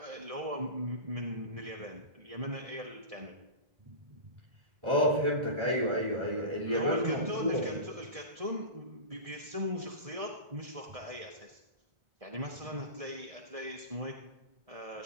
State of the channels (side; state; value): left; late; 1.7 ms